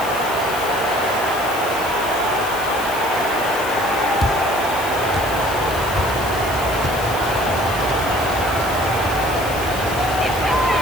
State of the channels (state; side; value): noise; left; hiss, 12 dB below the sound